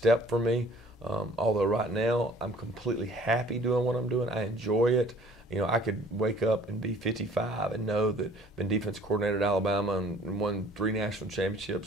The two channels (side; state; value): both; normal; correlation 0.53